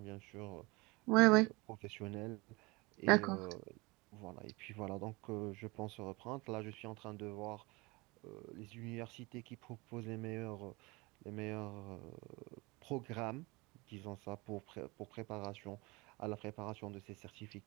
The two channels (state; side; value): quieter; left; 25.1 dB